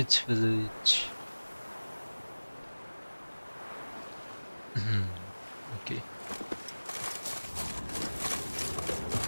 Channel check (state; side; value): inverted; both; correlation -1.00